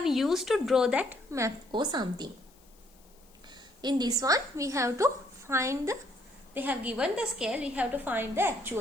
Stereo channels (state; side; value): noise; left; hiss, 29 dB below the sound